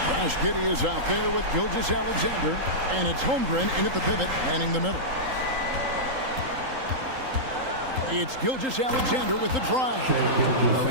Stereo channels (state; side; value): late; left; 3.8 ms